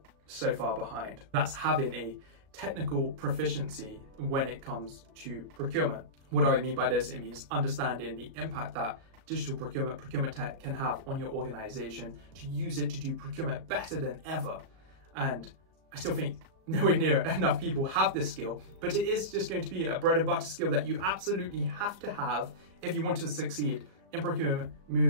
so far behind. That's having a technical proficiency when it comes to procurement. What do I mean by this? It means understanding the impact that digital procurement tech can have on your organization, to use it to do procurement better than ever. And I still think nowhere near enough people have this skill, but it is just going to be a bread and butter skill that you absolutely have to have if you want to succeed in procurement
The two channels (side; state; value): left; late; 37 ms